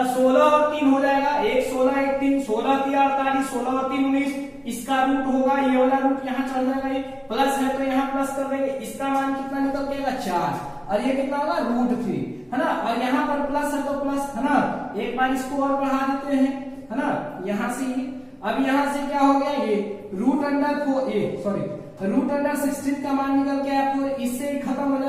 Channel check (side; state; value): both; identical; correlation 1.00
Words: 16 और 3 हो जाएगा, 1 16 1 3, 16 3 48, 16 और 3 19, इसका रूट होगा, ये वाला रूट यहाँ चल जाएगा, ये प्लस है तो यहाँ प्लस कर देंगे, इसका मान कितना निकल जाएगा 4, और ये कितना होगा √3, है ना, और यहाँ पर प्लस है तो प्लस, है ना, एक बार इसको और बढ़ा देते हैं, है ना, यहाँ से ये, अब यहाँ से क्या हो गया, ये √16 का मान निकल के आया 4, इससे खत्म हो